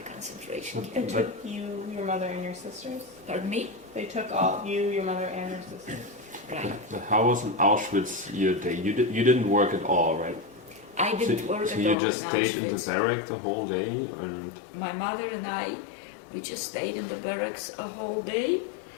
concentration They camp. took you, your mother, and your sisters? Pardon me? They took all you, your mother, and your sisters? Right. But how was in Auschwitz your day? You didn't work at all, right? I didn't work at So all you just in stayed in the Auschwitz. barrack the whole day, and My mother and I, we just stayed in the barracks a whole day,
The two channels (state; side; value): drops out; right; at 12.0 s